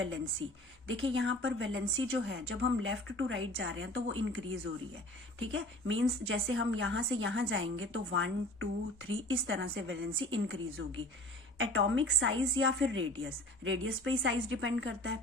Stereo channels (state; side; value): normal; both; correlation 0.43